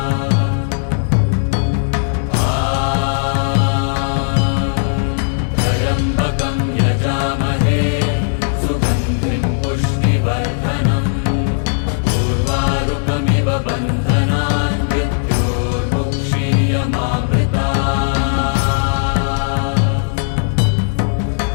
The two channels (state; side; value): silent; right; digital silence